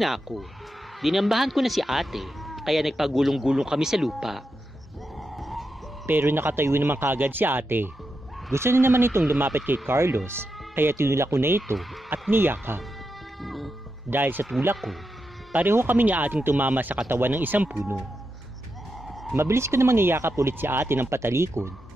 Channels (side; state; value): both; normal; correlation 0.87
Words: na ako. Dinambahan ko na si ate, kaya nagpagulong-gulong kami sa lupa. Pero nakatayo naman kagad si ate. Gusto na naman itong lumapit kay Carlos, kaya tinulak ko na ito at niyakap. Dahil sa tulak ko, pareho kami ni ating tumama sa katawan ng isang puno. Mabilis ko namang niyakap ulit si ate ng patalikod